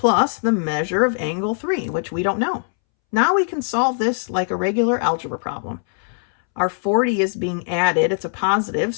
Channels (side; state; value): right; silent; 65 dB below the other